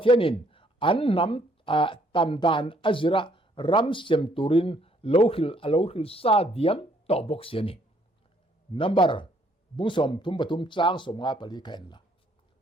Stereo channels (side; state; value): both; normal; correlation 0.66